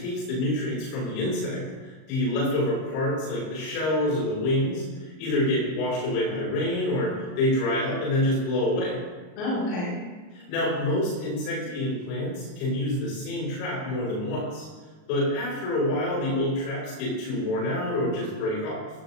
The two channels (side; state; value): right; late; 38 ms